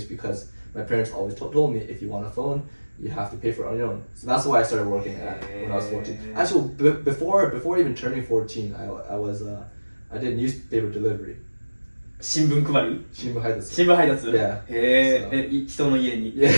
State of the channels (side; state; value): both; inverted; correlation -1.00